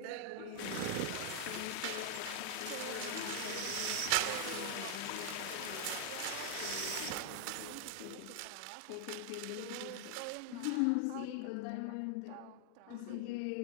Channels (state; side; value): different; both; correlation 0.00